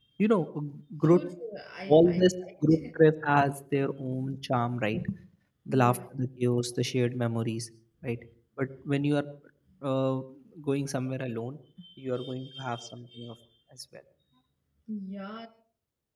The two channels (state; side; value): identical; both; correlation 1.00